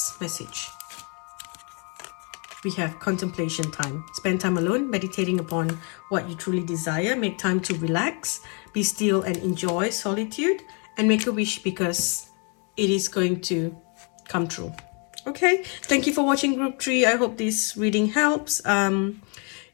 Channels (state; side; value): quieter; right; 36.1 dB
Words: message. We have contemplation time. Spend time alone, meditating upon what you truly desire. Make time to relax, be still and enjoy solitude, and make a wish, because it is going to come true. Okay, thank you for watching Group 3. I hope this reading helps.